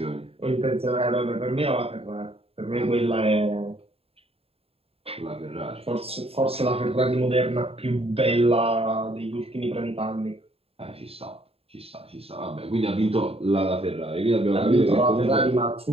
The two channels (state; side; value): late; left; 0.28 ms